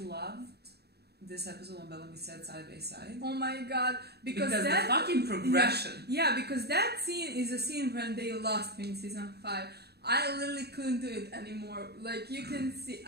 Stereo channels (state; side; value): late; left; 0.47 ms